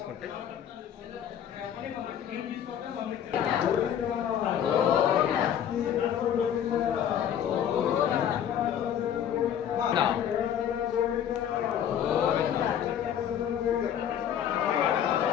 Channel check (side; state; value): right; quieter; 9.5 dB